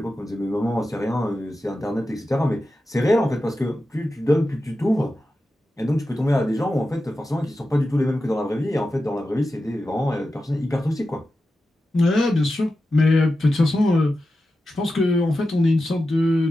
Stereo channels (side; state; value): both; normal; correlation 0.92